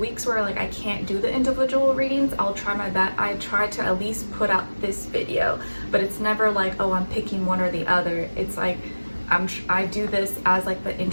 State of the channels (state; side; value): inverted; both; correlation -1.00